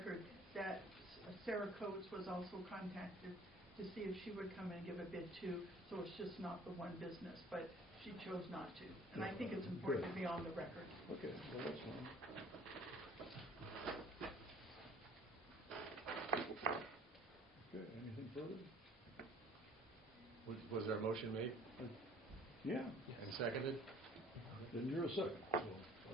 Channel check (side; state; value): both; normal; correlation 0.53